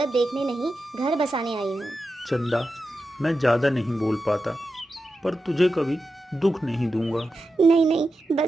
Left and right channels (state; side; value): normal; both; correlation 0.90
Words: देखने नहीं, घर बसाने आई हूँ। चंदा, मैं ज़्यादा नहीं बोल पाता, पर तुझे कभी दुख नहीं दूंगा। नहीं नहीं,